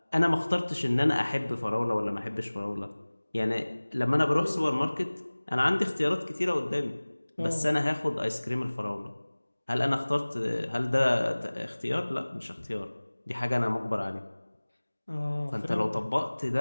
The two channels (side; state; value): both; inverted; correlation -1.00